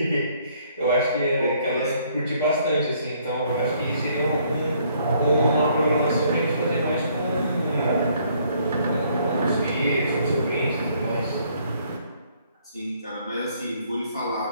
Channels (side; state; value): both; inverted; correlation -0.65